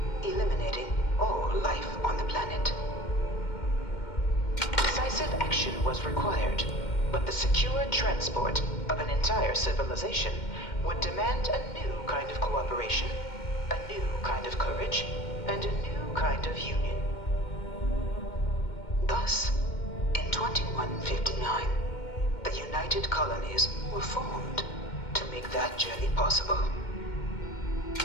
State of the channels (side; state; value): right; late; 2.1 ms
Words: eliminating all life on the planet. Decisive action was required, but the secure transport of an entire civilization would demand a new kind of cooperation, a new kind of courage, and a new kind of union. Thus, in 2159, the United Colonies were formed to make that journey possible.